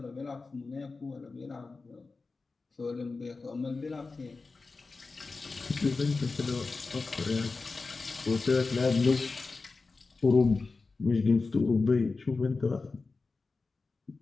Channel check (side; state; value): right; quieter; 4.0 dB